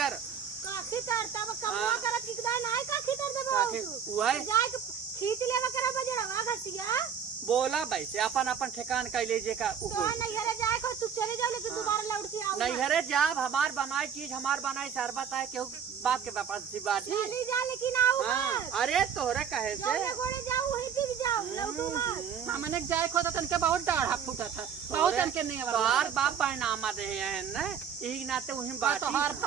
काखी तर तब कमुआ हाँ। करत किकदा नाय काखी तर देबो काखी उहे जाए के खींच लेवा करा बजड़वा घसिया बोला वैसे अपन अपन ठिकान कैले जे का तो नहीं हरे जाए को तू चले जाओ लेकिन दोबारा लौट के आओ नहीं हरे जाब हमार बनाई चीज हमार बनाई शरबत है केहू बाप के पास सी बात ही चली जा लेकिन आओ हाँ मत अरे तोहरे कहे से जौने गोड़े जाओ वहीं टिक जाओ लौटू मत हमने जाए खो तो तनके बहुत डाढ़ा फूटा था बहुत तनके नहीं तोहार बाप पैनामा दे हैं ना यही नाते वही बात तो हर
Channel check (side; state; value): left; quieter; 7.6 dB